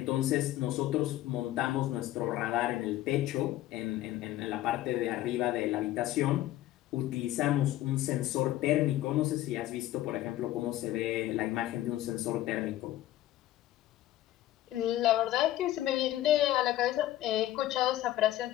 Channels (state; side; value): quieter; right; 14.4 dB